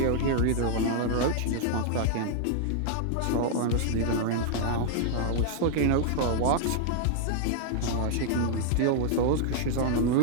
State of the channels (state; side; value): different; both; correlation 0.00